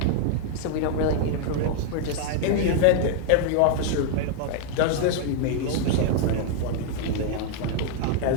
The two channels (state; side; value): different; both; correlation 0.00